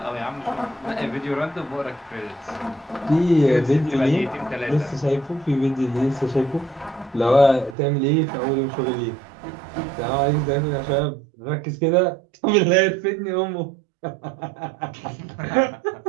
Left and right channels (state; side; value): drops out; left; at 7.8 s